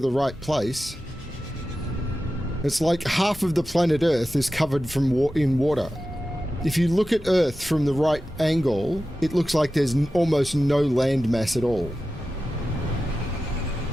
right place. It's like half of the planet Earth is covered in water. If you look at Earth from the right angle, it looks like there's almost no land mass at all.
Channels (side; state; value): both; normal; correlation 0.93